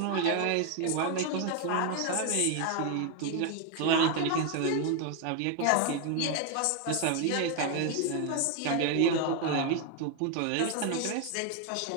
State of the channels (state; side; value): different; both; correlation 0.01